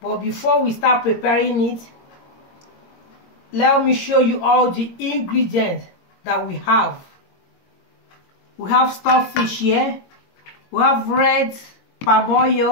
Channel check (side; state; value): right; late; 22 ms